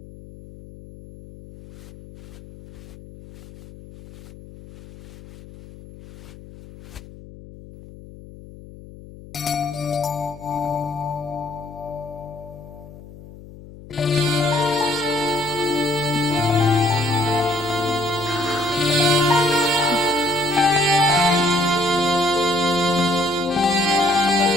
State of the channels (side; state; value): left; noise; hum, 18 dB below the sound